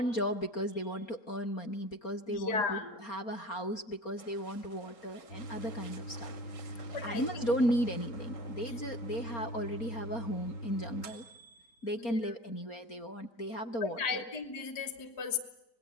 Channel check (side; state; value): right; late; 4.3 ms